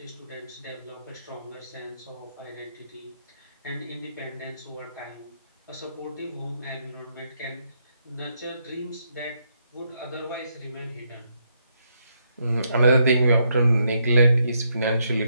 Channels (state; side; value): inverted; both; correlation -0.77